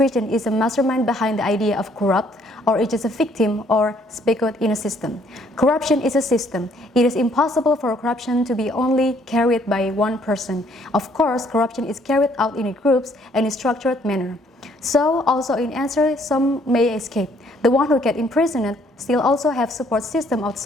is a mastermind behind the idea of corrupt, or it is a victim or speculate in a system. Corruption is a system. It is impossible for corruption to be only carried by one person. Of course, corruption is carried out in groups and in a structured manner. So, also in answer, some may escape. The one who get imprisoned still also have support system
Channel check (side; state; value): both; normal; correlation 0.64